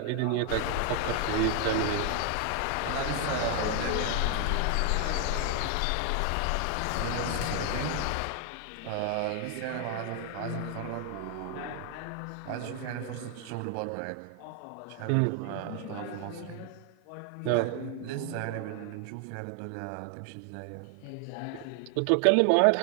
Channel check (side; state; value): both; different; correlation 0.00